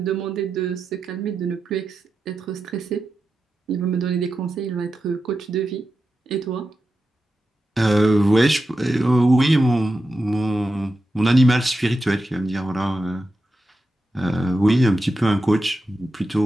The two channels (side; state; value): both; normal; correlation 0.90